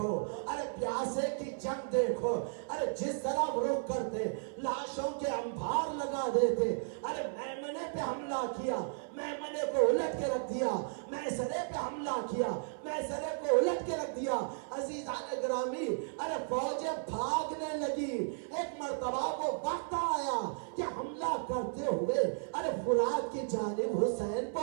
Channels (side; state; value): left; silent; 55 dB below the other